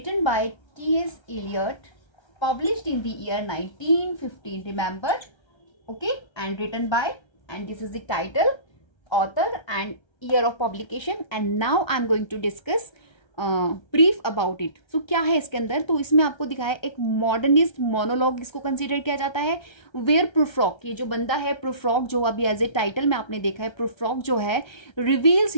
by T.S. Eliot, published in the year 1915, remember, okay, and written by, and this is the title, author and year of publication, and now I'm going to discuss brief about it. So क्या है इसके अंदर, तो इसमें आपको दिखाया एक modernist monologue इसको कंसिडर किया जाता है, वेयर प्रूफ्रॉक, ये जो बंदा है प्रूफ्रॉक, जो अभी एज ए टाइटल में आपने देखा है, प्रूफ्रॉक जो है रिवील्स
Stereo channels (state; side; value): late; right; 1.3 ms